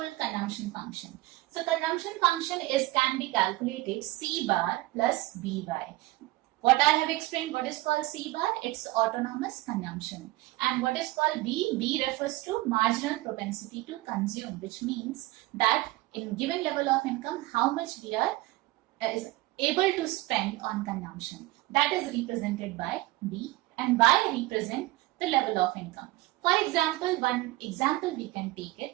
consumption function. So consumption function can be calculated C bar plus BY. What I have explained, what is called C bar? It's autonomous consumption. And what is called B? B refers to marginal propensity to consume, which means that in given level of income, how much we are is able to spend on consumption. That is represented by B, and Y represent the level of income. For example, one example we can take it,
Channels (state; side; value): quieter; left; 19.0 dB